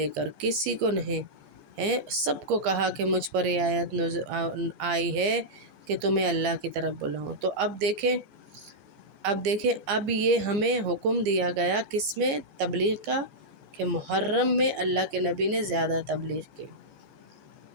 کر، کسی کو نہیں ہے، سب کو کہا کہ مجھ پر یہ آیت آئی ہے کہ تمہیں اللہ کی طرف بلاؤں۔ تو اب دیکھیں اب یہ ہمیں حکم دیا گیا کس میں؟ تبلیغ کا، کہ محرم میں اللہ کے نبی نے زیادہ تبلیغ کی،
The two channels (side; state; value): left; late; 15 ms